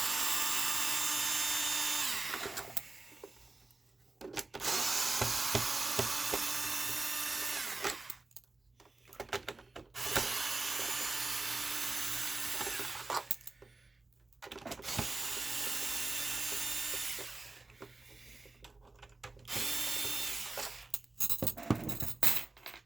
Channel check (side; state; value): left; quieter; 3.4 dB